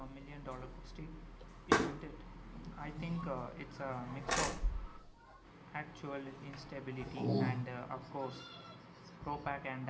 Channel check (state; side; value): identical; both; correlation 1.00